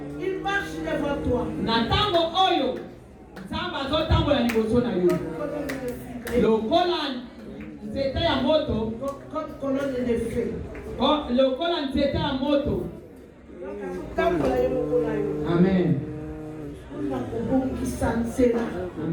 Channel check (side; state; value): both; identical; correlation 1.00